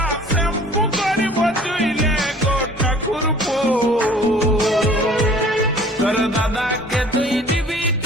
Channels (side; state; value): both; normal; correlation 0.50